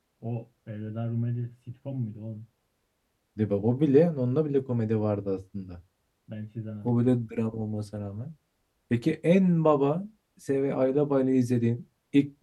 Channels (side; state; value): both; identical; correlation 1.00